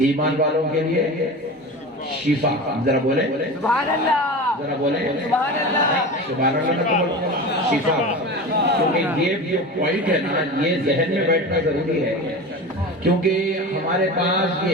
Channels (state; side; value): normal; both; correlation 0.30